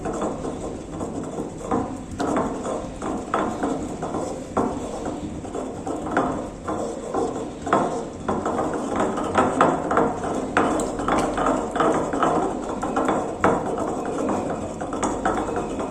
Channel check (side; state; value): both; identical; correlation 1.00